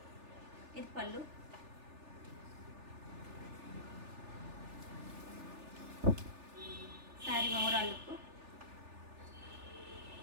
ఇది పళ్ళు. శారీ ఓవరాల్ లుక్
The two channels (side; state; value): left; late; 3.4 ms